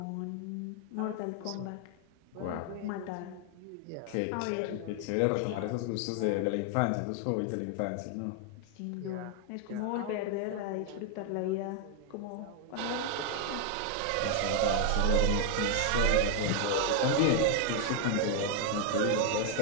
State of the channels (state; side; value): different; both; correlation 0.00